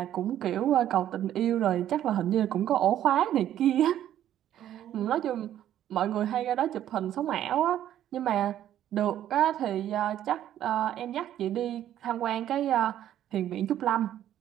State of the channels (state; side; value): quieter; left; 11.5 dB